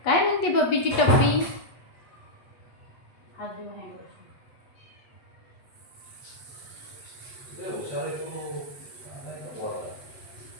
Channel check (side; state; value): right; late; 8.4 ms